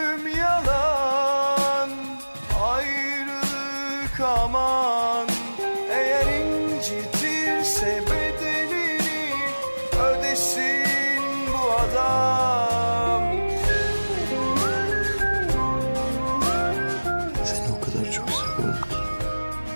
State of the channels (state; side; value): inverted; both; correlation -1.00